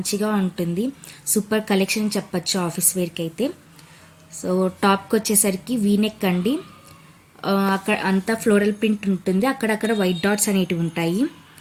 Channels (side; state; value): both; identical; correlation 1.00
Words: ఉంటుంది. సూపర్ కలెక్షన్ చెప్పచ్చు ఆఫీస్ వేర్కి అయితే. సో టాప్కి వచ్చేసరికి వీనెక్ అండి. అక్కడ అంతా ఫ్లోరల్ ప్రింట్ ఉంటుంది. అక్కడక్కడ వైట్ డాట్స్ అనేటివి ఉంటాయి.